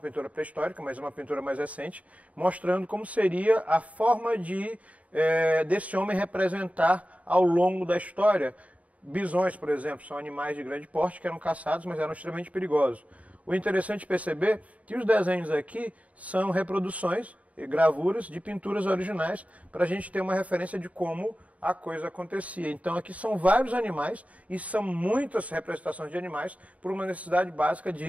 pré-histórica, mas é uma pintura mais recente, mostrando como seria a forma desse homem representar ao longo da história. Bisões, por exemplo, são animais de grande porte que eram caçados, mas eram extremamente perigosos. O interessante é perceber que os desenhos aqui são reproduções e gravuras de pinturas originais para a gente ter uma referência de como a coisa acontecia. Então aqui são vários animais e são muitas representações de animais por uma necessidade básica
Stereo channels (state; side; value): late; left; 0.068 ms